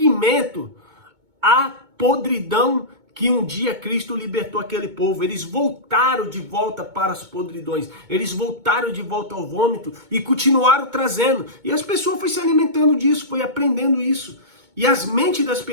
à podridão que um dia Cristo libertou aquele povo. Eles voltaram de volta para as podridões. Eles voltaram de volta ao vômito e continuaram trazendo. E as pessoas foram se alimentando disso, foi aprendendo isso. E as mentes das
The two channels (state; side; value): late; left; 2.2 ms